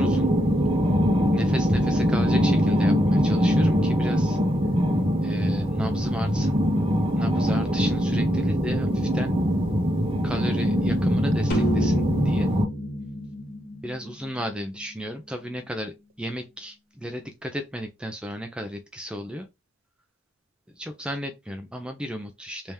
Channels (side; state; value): both; normal; correlation 0.81